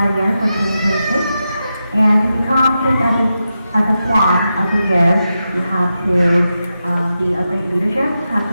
year for 2026. And to become picked as a swan of the year, you have to be a great leadership, have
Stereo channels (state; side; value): inverted; both; correlation -0.89